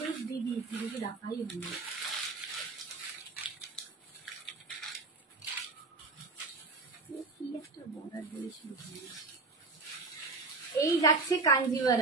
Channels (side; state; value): left; quieter; 3.8 dB